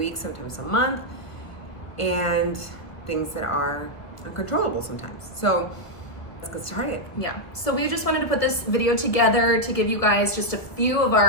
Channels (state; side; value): late; right; 1.3 ms